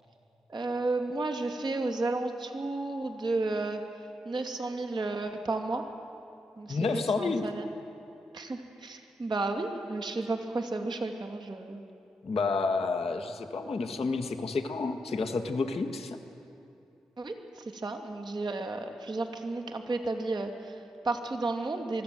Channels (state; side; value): normal; both; correlation 0.82